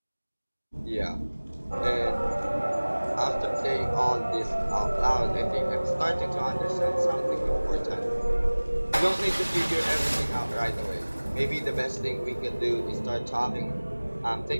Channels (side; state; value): both; inverted; correlation -1.00